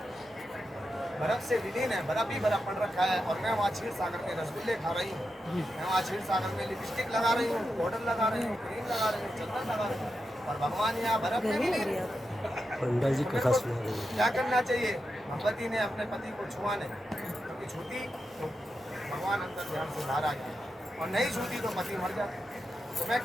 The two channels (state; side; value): normal; both; correlation 0.88